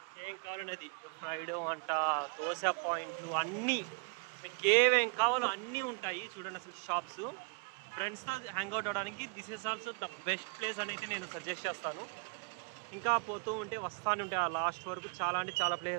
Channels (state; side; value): quieter; left; 36.0 dB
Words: ఏం కావాలనేది ఫ్రైడ్ అంట, దోశ పాయింట్లు అన్నీ, మీకు ఏమేం కావాలో అన్నీ ఉంటాయి చూడండి. అసలు షాప్స్ ఫ్రెండ్స్తో హ్యాంగ్అవుట్ అవ్వడానికి this is also the best place అని అయితే నేను సజెస్ట్ చేస్తాను. ఇంకా పోతూ ఉంటే వస్తాను ఉంటే ఆ లాస్ట్ వరకు చాలా అంటే చాలా